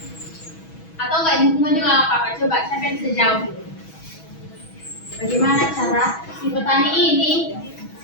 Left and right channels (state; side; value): late; right; 6.2 ms